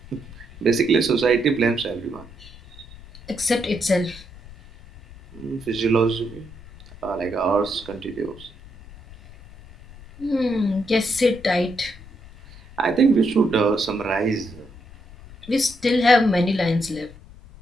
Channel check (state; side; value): noise; left; rumble, 19 dB below the sound